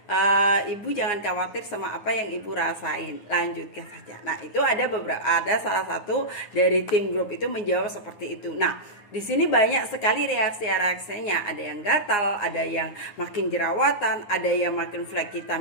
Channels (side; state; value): right; late; 9.7 ms